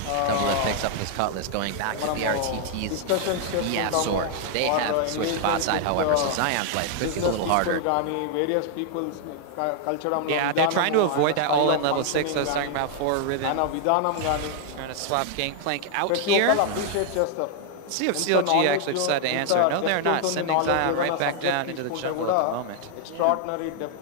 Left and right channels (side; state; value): both; different; correlation 0.00